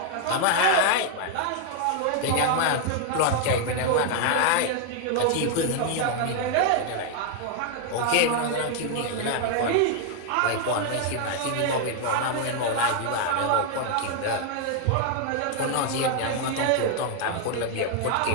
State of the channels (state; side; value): different; both; correlation 0.00